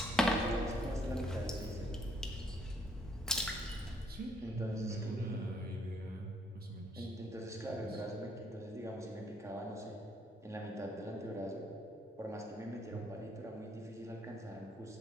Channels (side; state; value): both; normal; correlation 0.67